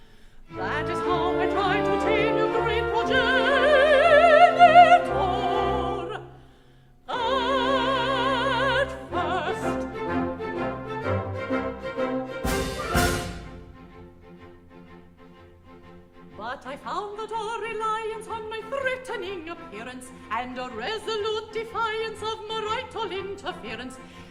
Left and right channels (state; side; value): identical; both; correlation 1.00